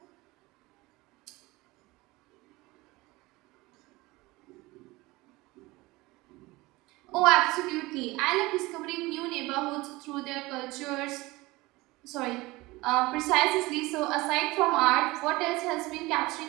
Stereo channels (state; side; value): quieter; left; 21.2 dB